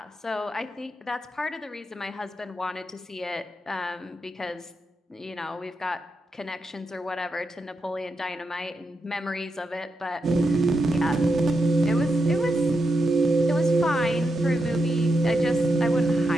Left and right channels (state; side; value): normal; both; correlation 0.85